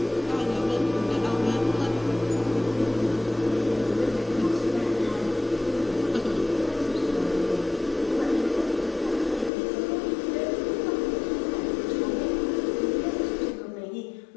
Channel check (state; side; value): drops out; right; at 9.5 s